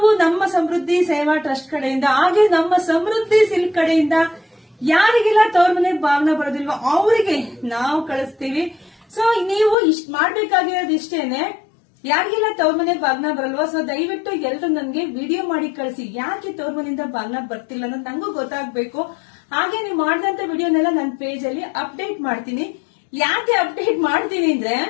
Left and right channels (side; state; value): right; drops out; at 9.8 s